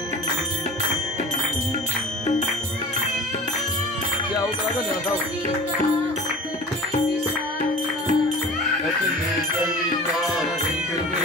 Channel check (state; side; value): normal; both; correlation 0.39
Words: क्या होगा ना बताओ।